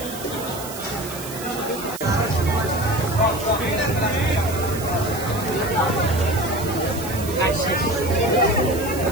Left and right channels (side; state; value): right; noise; hiss, 11 dB below the sound